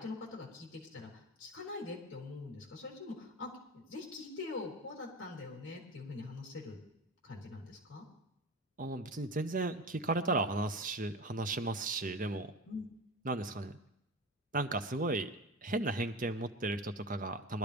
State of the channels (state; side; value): normal; both; correlation 0.28